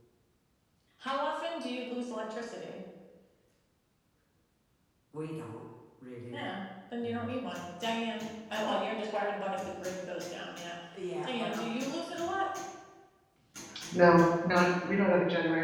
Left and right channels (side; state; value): both; identical; correlation 1.00